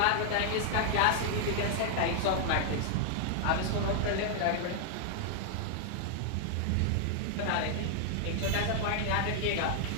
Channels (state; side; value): different; both; correlation 0.00